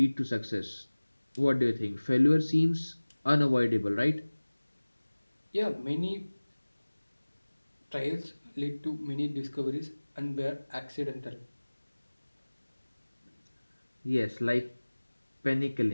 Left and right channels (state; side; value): inverted; both; correlation -1.00